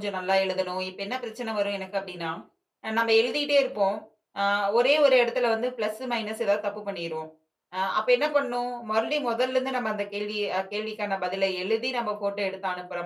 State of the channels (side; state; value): both; identical; correlation 1.00